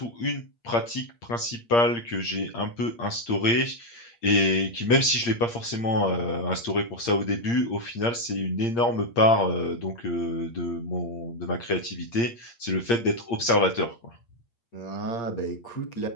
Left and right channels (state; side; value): late; right; 8.6 ms